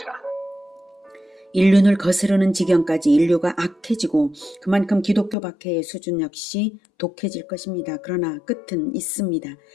인륜을 거스르는 지경까지 인류가 악해지고 그만큼 기독교 박해의 수준 역시 독해질 것입니다. 그러나 끝은 있습니다.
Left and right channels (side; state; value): right; drops out; at 5.4 s